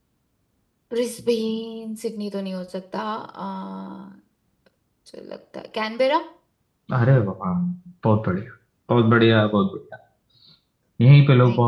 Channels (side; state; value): both; identical; correlation 1.00